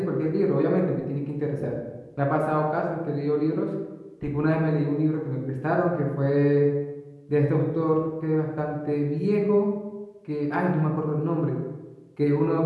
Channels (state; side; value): identical; both; correlation 1.00